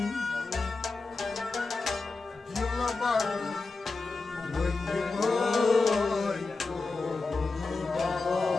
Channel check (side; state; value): right; quieter; 3.8 dB